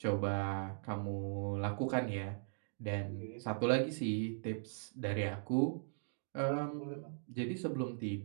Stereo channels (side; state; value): left; silent; digital silence